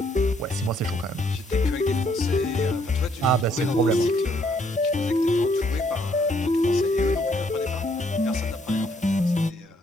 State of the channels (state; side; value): normal; both; correlation 0.69